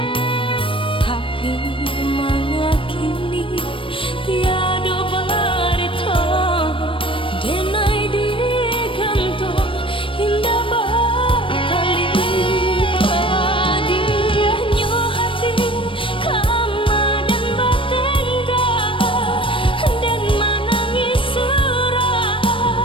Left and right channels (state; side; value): late; right; 0.25 ms